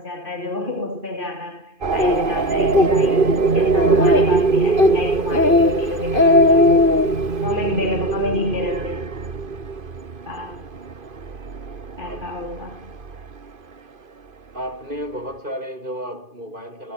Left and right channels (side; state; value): left; late; 2.5 ms